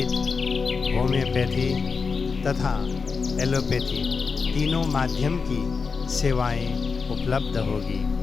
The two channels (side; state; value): right; quieter; 5.0 dB